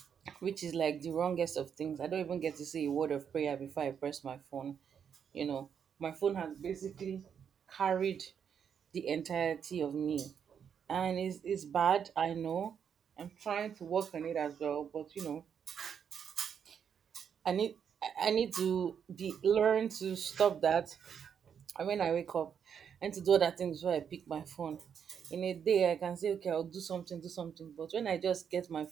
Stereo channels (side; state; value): left; quieter; 7.6 dB